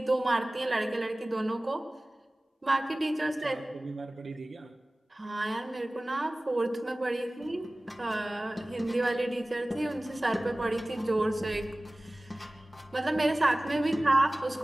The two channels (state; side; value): normal; both; correlation 0.98